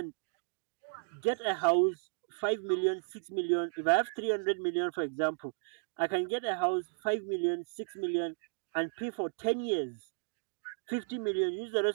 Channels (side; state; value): left; silent; digital silence